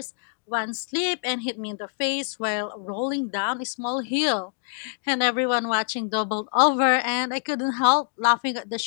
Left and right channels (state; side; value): silent; right; digital silence